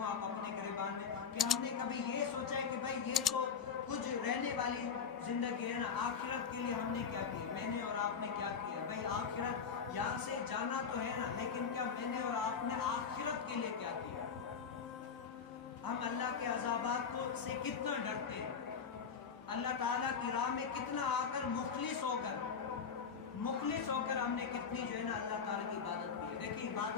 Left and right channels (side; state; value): right; quieter; 6.3 dB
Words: آپ اپنے گریبان میں, کہ ہم نے کبھی یہ سوچا ہے کہ بھائی یہ تو کچھ رہنے والی زندگی ہے نا, آخرت کے لیے ہم نے کیا کیا, میں نے اور آپ نے کیا کیا. بھائی آخرت یہاں سے جانا تو ہے نا, لیکن کیا میں نے اور آپ نے آخرت کے لیے کیا کیا. ہم اللہ کے عذابات سے کتنا ڈرتے ہیں, اللہ تعالیٰ کی راہ میں کتنا آ کر مخلص ہو کر ہم نے کتنی جو ہے نا اللہ تعالیٰ کی عبادت کی ہے. دیکھیے